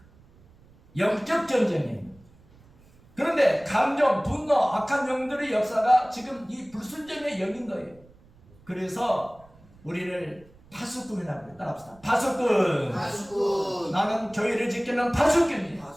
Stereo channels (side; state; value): right; noise; rumble, 27 dB below the sound